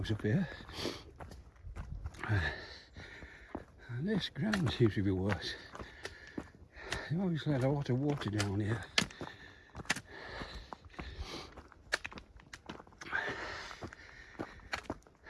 up here. And this ground seems to be worse. They obviously had a lot of water down here.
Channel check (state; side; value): identical; both; correlation 1.00